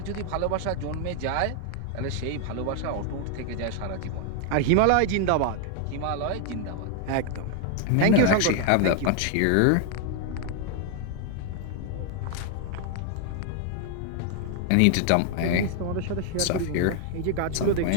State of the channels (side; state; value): both; different; correlation 0.00